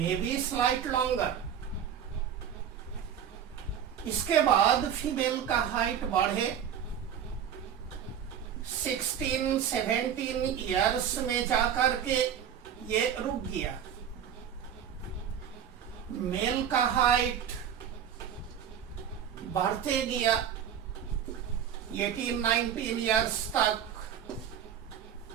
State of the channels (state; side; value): quieter; left; 8.7 dB